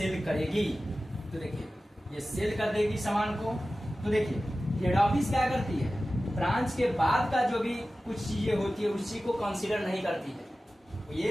करेगी, तो देखिए ये सेल कर देगी सामान को, तो देखिए हेड ऑफिस क्या करती है, ब्रांच के बाद का जो भी कुछ चीजें होती है उसी को कंसीडर नहीं करती है। तो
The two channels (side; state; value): both; normal; correlation 0.95